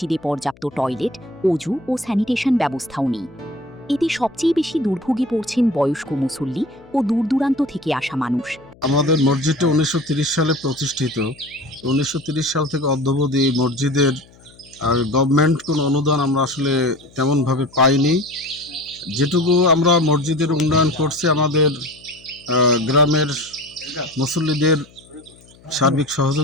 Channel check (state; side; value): noise; left; hum, 26 dB below the sound